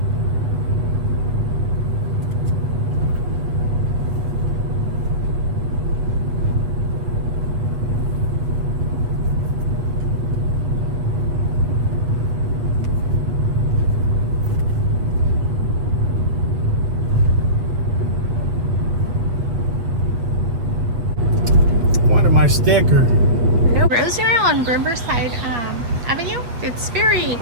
My sticker. No, Rosemary on Riverside Avenue. It's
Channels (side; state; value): left; late; 7.9 ms